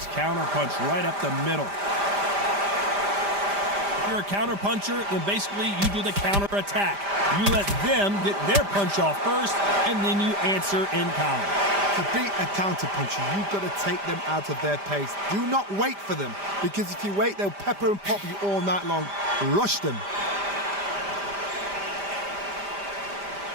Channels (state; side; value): late; left; 5.0 ms